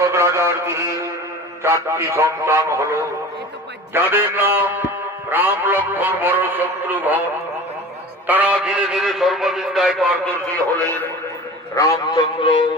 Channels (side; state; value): both; normal; correlation 0.37